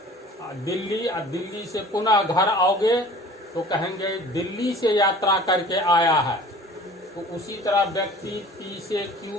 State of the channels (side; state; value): both; normal; correlation 0.46